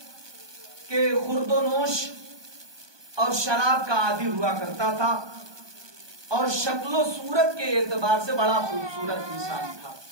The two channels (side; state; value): left; late; 1.2 ms